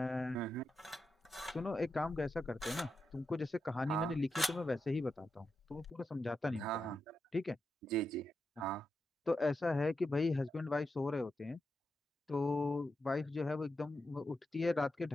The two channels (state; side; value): normal; both; correlation 0.87